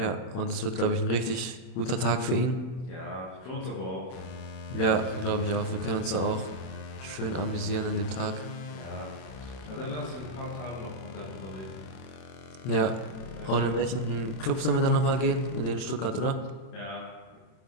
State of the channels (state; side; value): late; right; 32 ms